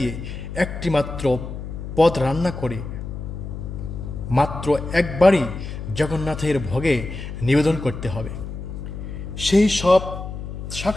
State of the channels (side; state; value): left; noise; hum, 8 dB below the sound